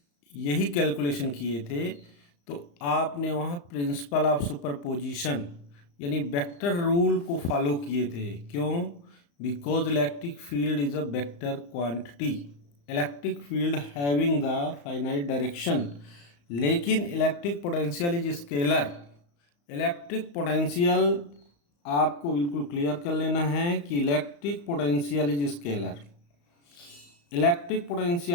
यही कैलकुलेशन किए थे तो आपने वहाँ प्रिंसिपल ऑफ सुपरपोजिशन यानी वेक्टर रूल को फॉलो किए थे। क्यों? Because electric field is a vector quantity, electric field having the finite direction, लेकिन electric potential is scalar. Electric potential आपको बिल्कुल क्लियर कर लेना है कि electric potential is scalar, electric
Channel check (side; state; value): right; late; 35 ms